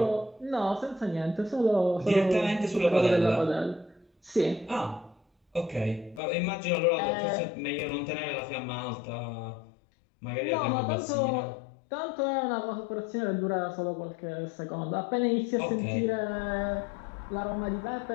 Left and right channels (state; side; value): drops out; right; at 6.2 s